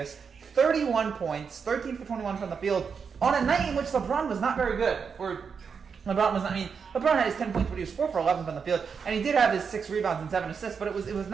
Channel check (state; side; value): quieter; left; 6.1 dB